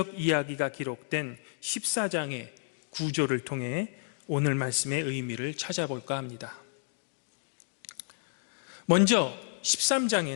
이야기가 기록된 14장의 구조를 통해 오늘 말씀의 의미를 찾아볼까 합니다. 먼저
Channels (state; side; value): silent; right; digital silence